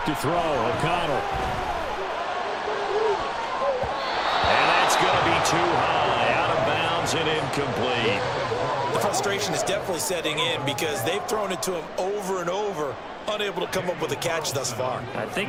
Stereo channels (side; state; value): both; identical; correlation 1.00